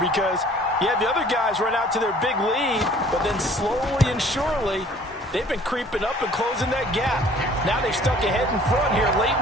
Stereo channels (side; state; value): both; normal; correlation 0.53